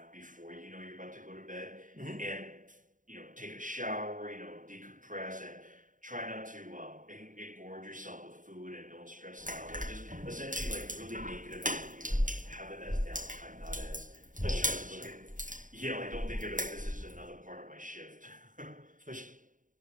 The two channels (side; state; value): left; late; 0.38 ms